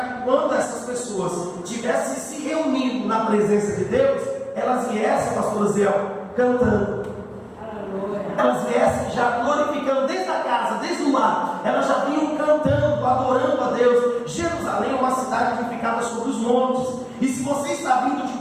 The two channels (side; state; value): both; identical; correlation 1.00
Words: quando essas pessoas tivessem se reunido na presença de Deus, elas viessem, pastor Zé, cantando. Elas viessem já glorificando desde a casa, desde o lar. Elas já vinham cantando, adorando a Deus. Jerusalém é uma cidade edificada sobre os montes. E se você está vindo de